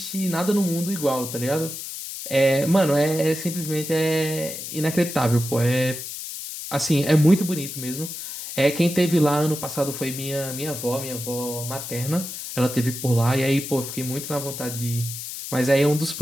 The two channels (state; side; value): noise; left; hiss, 8 dB below the sound